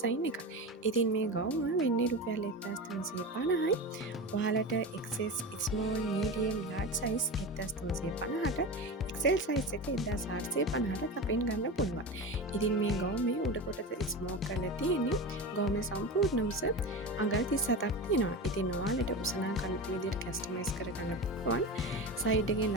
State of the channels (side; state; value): both; normal; correlation 0.25